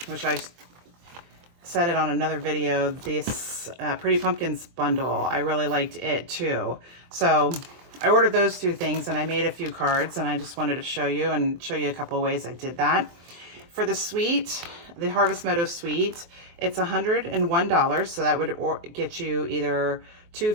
which I said it on another video, this Pretty Pumpkins bundle. I really liked it too. So I ordered those two things and I made a few cards and I just wanted to show you a couple of ways I did that. For the suite, the Harvest Meadow Suite, it's $101. So that would get you either two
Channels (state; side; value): late; left; 23 ms